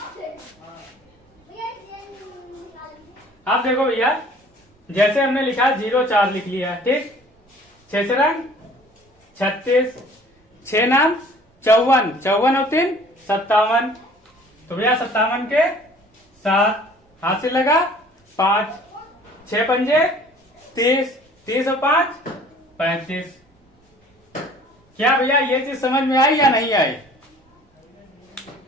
अब देखो भैया जैसे हमने लिखा 0 4 लिख लिया। ठीक, 6 36, 6 नाम 54, 54 और 3 57। तो भैया 57 के 7 हाथ से लगा 5, 6 पंजे 30, 30 और 5 35। क्या भैया ये चीज समझ में आई या नहीं आई?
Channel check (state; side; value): normal; both; correlation 0.51